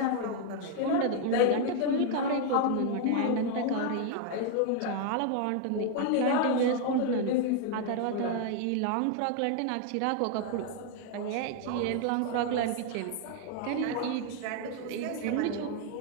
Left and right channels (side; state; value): both; different; correlation 0.00